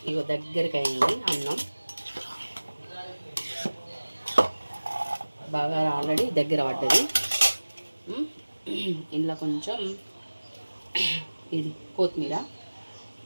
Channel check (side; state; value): both; inverted; correlation -1.00